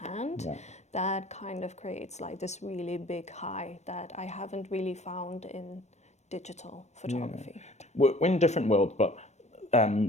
that kind of creates like this really big high that I haven't really found in digital photography. We're in different worlds, but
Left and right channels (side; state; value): right; late; 0.33 ms